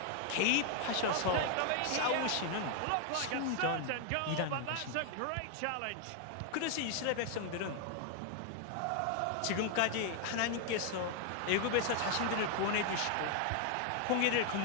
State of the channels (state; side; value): different; both; correlation 0.00